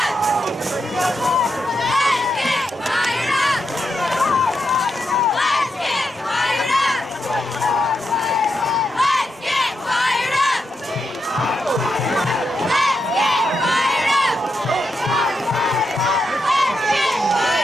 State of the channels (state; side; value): normal; both; correlation 0.85